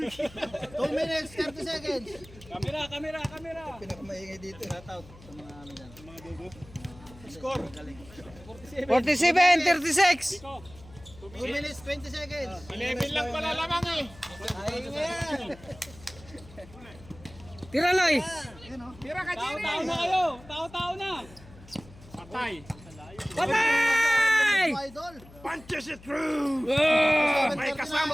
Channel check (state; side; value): noise; left; hum, 21 dB below the sound